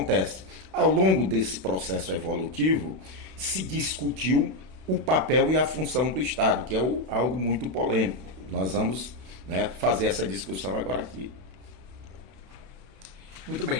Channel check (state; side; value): late; left; 32 ms